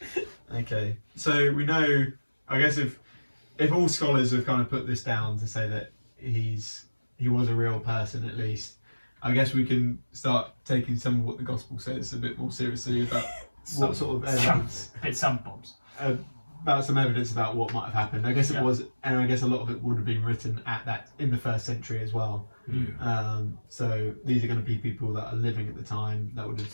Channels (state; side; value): inverted; both; correlation -1.00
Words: Okay, so we know, I guess if all scholars have kind of put this down to say that he was a real person at least, I guess we can start taking some of what the gospel says a bit more seriously about what sort of evidence. A bit some bombs. About some evidence about what might have happened. I guess it was, and I guess a lot of it would have been written in the 1st century as well. So these are going to be people that are living at the time that would have